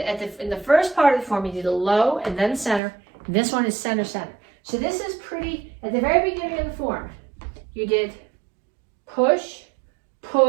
in the first part of the form, you did a low and then center. And this one is center, center. So this is pretty, at the very beginning of the form, you did push,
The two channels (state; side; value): drops out; left; at 2.8 s